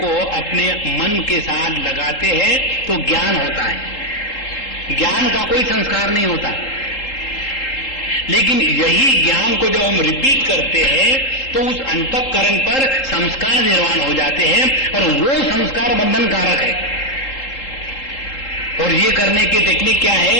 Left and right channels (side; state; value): right; late; 3.8 ms